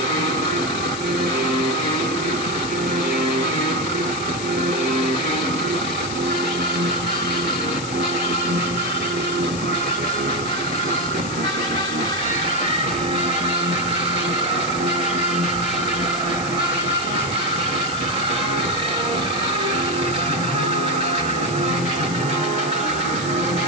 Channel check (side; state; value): left; noise; hiss, 10 dB below the sound